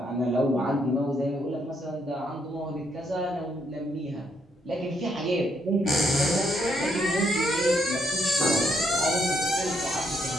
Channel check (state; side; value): normal; both; correlation 0.74